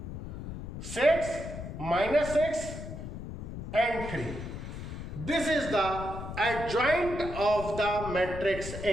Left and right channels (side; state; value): left; noise; rumble, 8 dB below the sound